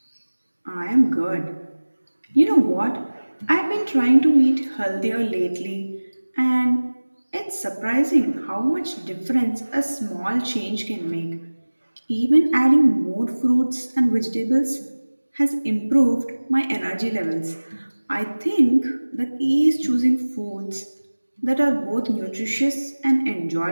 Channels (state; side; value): inverted; both; correlation -1.00